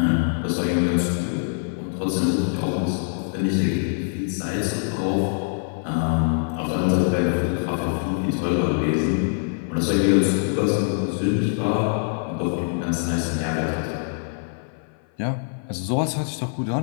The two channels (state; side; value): silent; right; 56 dB below the other